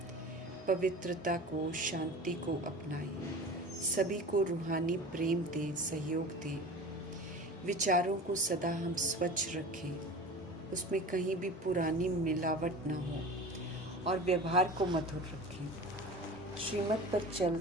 पवित्रता को, शांति को अपनाएं, सभी को रूहानी प्रेम दें, सहयोग दें। विचारों को सदा हम स्वच्छ रखें, उसमें कहीं भी पुरानी मिलावट न हो और व्यवहार को मधुर रखें। श्रीमत पर चल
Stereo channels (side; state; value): both; normal; correlation 0.36